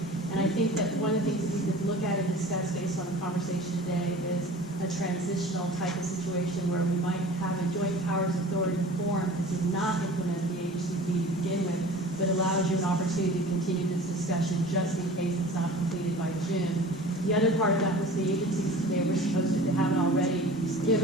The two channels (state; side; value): normal; both; correlation 0.41